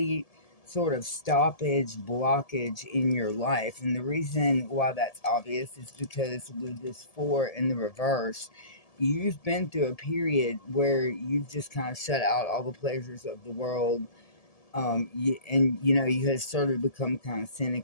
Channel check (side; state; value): right; late; 1.7 ms